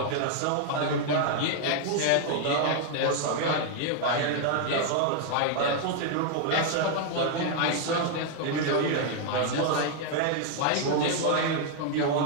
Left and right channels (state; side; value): different; both; correlation 0.00